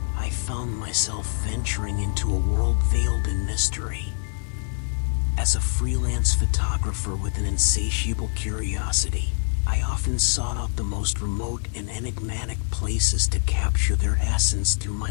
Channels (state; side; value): silent; right; 62 dB below the other